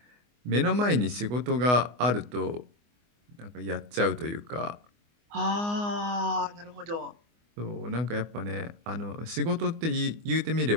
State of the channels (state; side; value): late; left; 24 ms